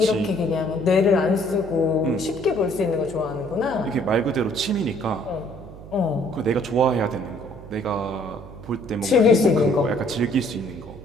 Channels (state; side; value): noise; right; hum, 16 dB below the sound